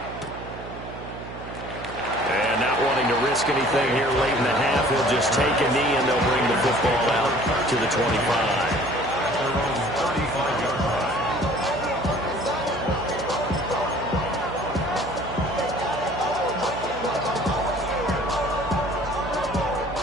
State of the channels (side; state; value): right; noise; hum, 12 dB below the sound